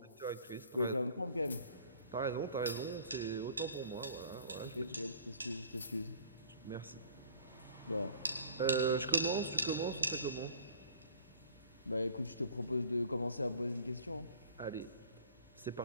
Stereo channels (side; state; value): both; inverted; correlation -0.51